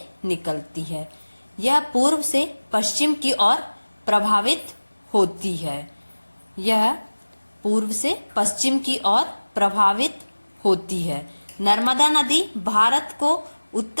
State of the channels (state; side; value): inverted; both; correlation -1.00